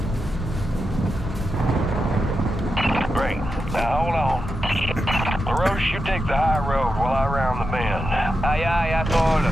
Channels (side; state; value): both; normal; correlation 0.88